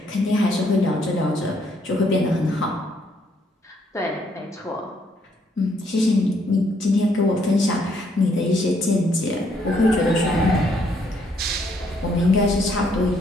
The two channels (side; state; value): both; normal; correlation 0.70